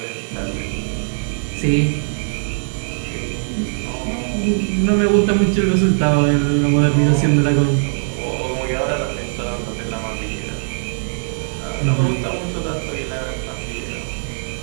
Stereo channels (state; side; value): silent; left; digital silence